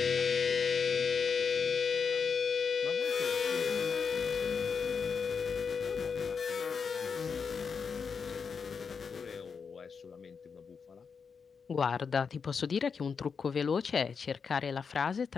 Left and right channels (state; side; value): quieter; right; 5.8 dB